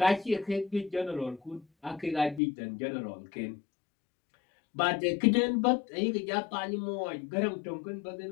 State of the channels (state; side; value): drops out; right; at 2.4 s